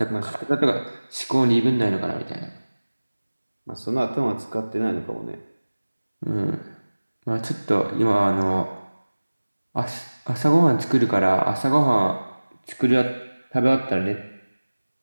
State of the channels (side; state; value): both; inverted; correlation -1.00